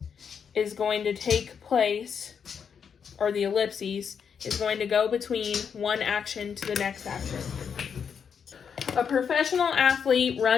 ... is going to take place, or the ellipses, is going to go between one action to the next action. A professional athlete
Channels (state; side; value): quieter; right; 6.9 dB